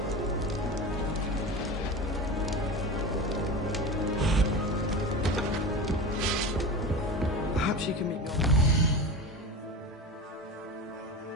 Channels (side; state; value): both; normal; correlation 0.27